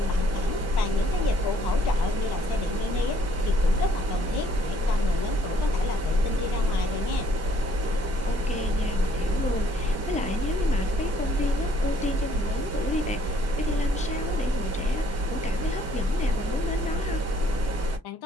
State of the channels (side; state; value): both; normal; correlation 0.63